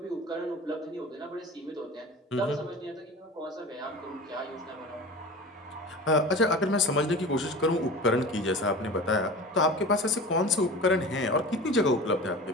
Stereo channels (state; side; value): normal; both; correlation 0.35